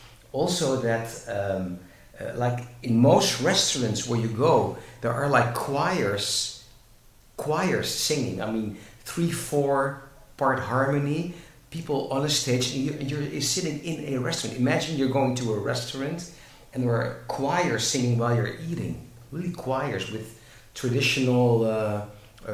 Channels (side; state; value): both; identical; correlation 1.00